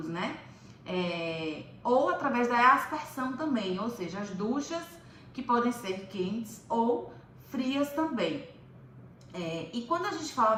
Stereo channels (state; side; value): identical; both; correlation 1.00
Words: né? Ou através da aspersão também, ou seja, as duchas que podem ser quentes ou frias também. E quando a gente fala